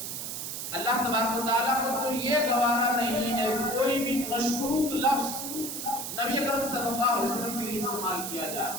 اللہ تبارک و تعالیٰ کو تو یہ گوارا نہیں ہے کہ کوئی بھی مشکوک لفظ نبی اکرم صلی اللہ علیہ وسلم کے لیے استعمال کیا جائے.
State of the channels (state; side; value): noise; right; hiss, 5 dB below the sound